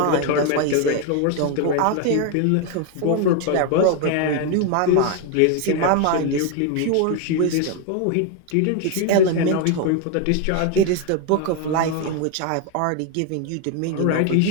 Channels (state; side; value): different; both; correlation 0.01